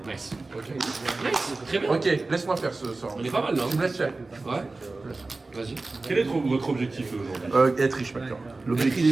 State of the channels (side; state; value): left; quieter; 3.4 dB